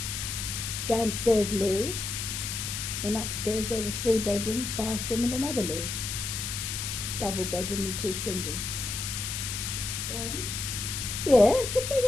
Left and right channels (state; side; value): noise; left; hiss, 4 dB below the sound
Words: Downstairs loo, and upstairs there were 3 bedrooms, bathroom and another loo. Double bedroom and 2 singles. Garden? Yes,